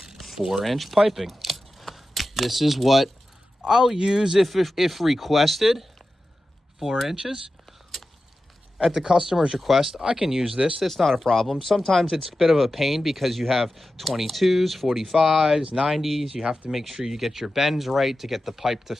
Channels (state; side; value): normal; both; correlation 0.93